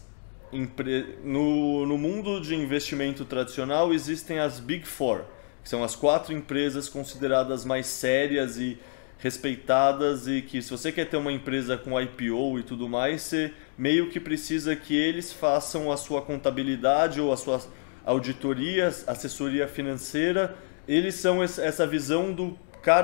No mundo de investimento tradicional existem as Big Four, que são as quatro empresas consideradas mais sérias e respeitadas e que se você quer ter uma empresa com IPO e tudo mais, você meio que precisa que eles façam a sua contabilidade ou a sua auditoria, assessoria financeira. Eles são essa visão do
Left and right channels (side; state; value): right; silent; digital silence